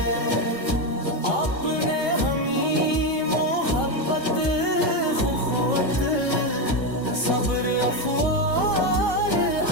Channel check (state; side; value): late; right; 1.5 ms